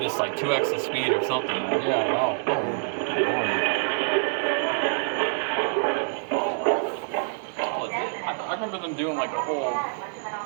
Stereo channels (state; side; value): silent; left; digital silence